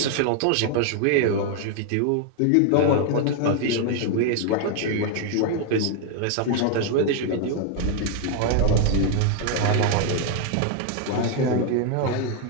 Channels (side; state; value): both; different; correlation 0.01